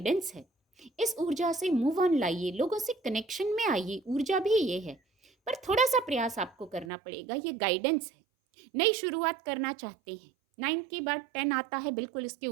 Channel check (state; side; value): drops out; left; at 6.9 s